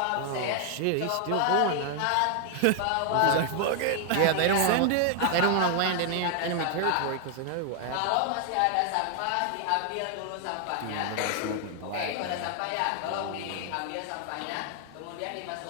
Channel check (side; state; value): both; different; correlation 0.00